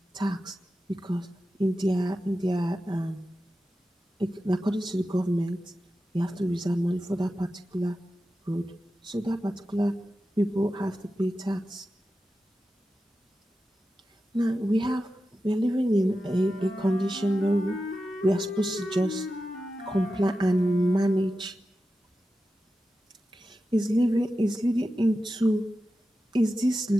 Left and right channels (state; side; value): normal; both; correlation 0.92